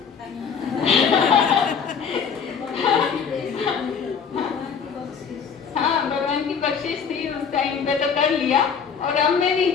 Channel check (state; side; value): quieter; right; 6.5 dB